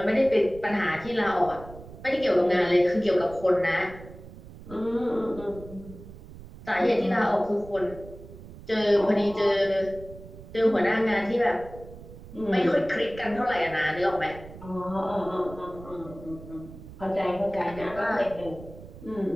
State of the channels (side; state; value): right; noise; rumble, 16 dB below the sound